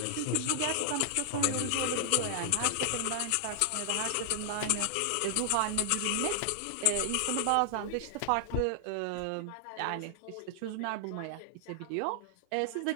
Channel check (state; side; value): different; both; correlation 0.00